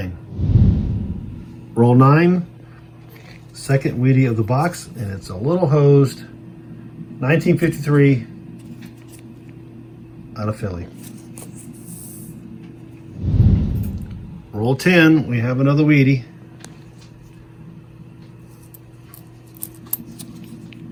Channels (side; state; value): both; identical; correlation 1.00